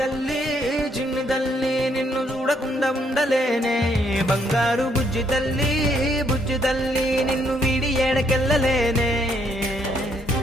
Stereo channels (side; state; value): both; normal; correlation 0.71